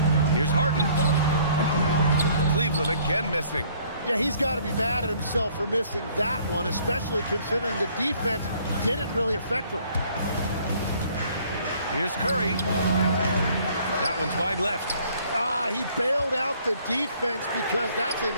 Here's Harden. Cleveland again missing. Yeah, he's got to be mad at himself for missing that one, especially considering the defense didn't really affect him. Here's Curry. That one's wide left. He bailed out the defense because that's an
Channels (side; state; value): both; inverted; correlation -0.59